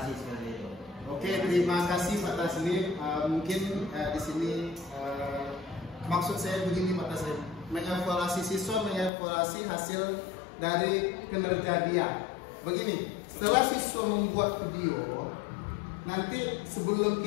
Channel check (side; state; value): right; drops out; at 9.1 s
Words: seperti itu. Oke, terima kasih Pak Taslim. Mungkin di sini maksud saya begini Pak Taslim, mengevaluasi siswa, mengevaluasi hasil dari kinerja dia. Begini, setelah siswa membuat video, nanti sebelum